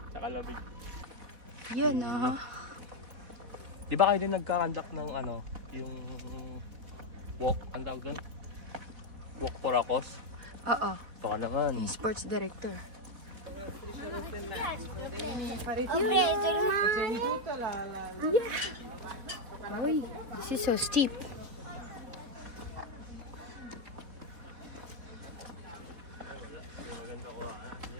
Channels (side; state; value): left; late; 4.1 ms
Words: sa lamig. Yun ah. Di ba kayo din nagka-conduct ng ano, yung walk, ang tawag doon? Walk for a cause? Oo. Baka naman. Yung sports director. Uy, this is so steep.